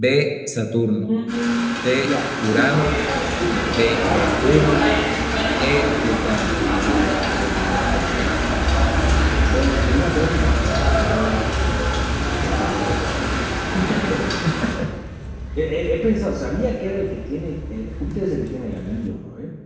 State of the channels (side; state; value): both; identical; correlation 1.00